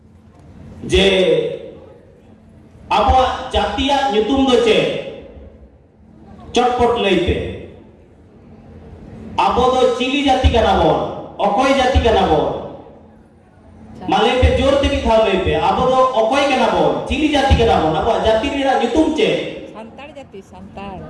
जे आबो जातिया ᱧᱩᱛᱩᱢ दो चे चटपट लई पे आबो दो चिली जाति कना बोल अकोय जाति कना बोल माले पे जोर ते भी था लई पे आबो दो अकोय कना बोल चिली जाति कना बोल आबो जाति रे ᱧᱩᱛᱩᱢ चे संतार जाति संतार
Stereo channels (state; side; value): identical; both; correlation 1.00